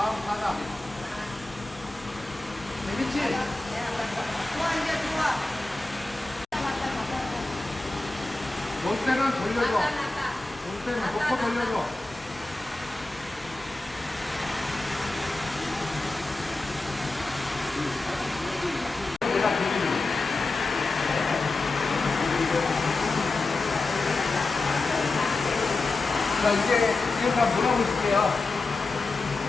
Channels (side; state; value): right; quieter; 3.2 dB